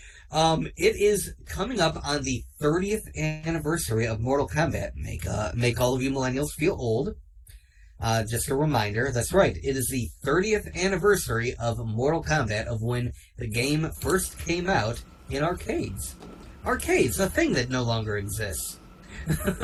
It is coming up on the 30th anniversary of Mortal Kombat. Make all of you millennials feel old. Just a reminder, that's right. It is the 30th anniversary of Mortal Kombat, of when the game first came out in arcades. Arcades, a thing that no longer exists.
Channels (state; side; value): identical; both; correlation 1.00